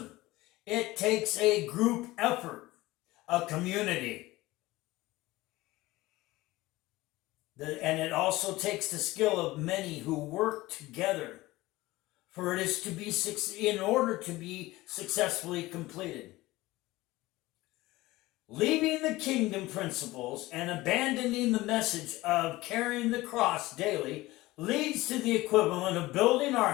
It takes a group effort, a community. And it also takes the skill of many who work together for it is to be in order to be successfully completed. Leaving the kingdom principles and abandoning the message of carrying the cross daily leads to the equivalent of building our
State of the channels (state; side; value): quieter; right; 18.9 dB